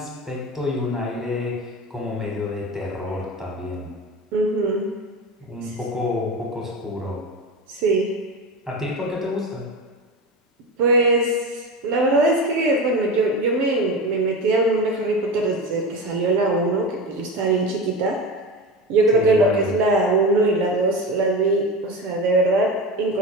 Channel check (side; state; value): both; normal; correlation 0.25